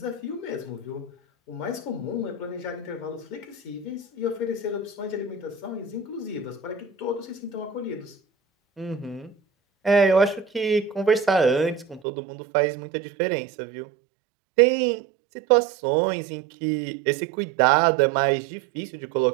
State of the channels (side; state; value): left; drops out; at 12.0 s